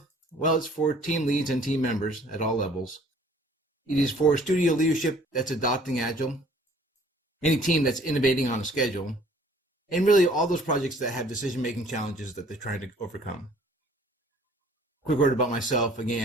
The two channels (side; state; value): both; normal; correlation 0.55